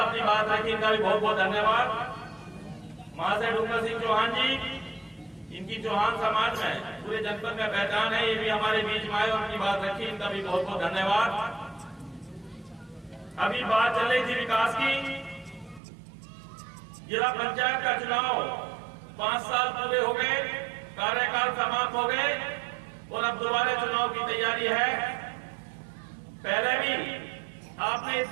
अपनी बात रखी, इनका भी बहुत बहुत धन्यवाद। महाशय डूंगर सिंह चौहान जी, इनकी चौहान समाज में पूरे जनपद में पहचान है, ये भी हमारे बीच में आए और अपनी बात रखी, इनका भी बहुत बहुत धन्यवाद। अभी बात चल रही थी विकास की। जिला पंचायत का चुनाव 5 साल पूरे हो गए, कार्यकाल समाप्त हो गए और अब दोबारा चुनाव की तैयारी है। पहले भी आपने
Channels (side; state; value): left; drops out; at 15.8 s